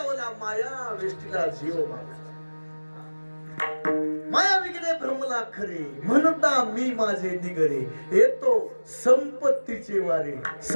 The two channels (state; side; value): inverted; both; correlation -1.00